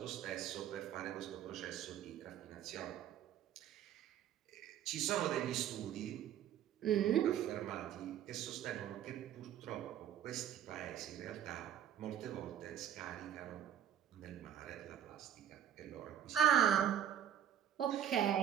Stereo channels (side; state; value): left; quieter; 10.0 dB